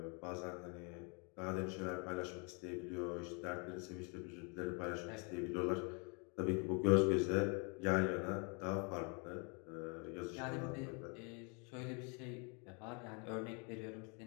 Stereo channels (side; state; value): right; quieter; 34.9 dB